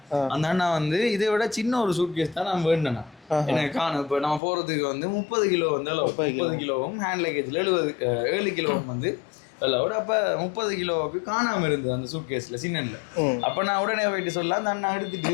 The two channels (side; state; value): right; drops out; at 4.4 s